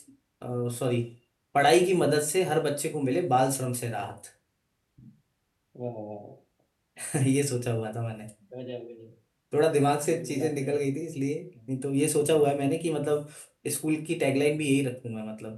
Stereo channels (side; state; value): both; identical; correlation 1.00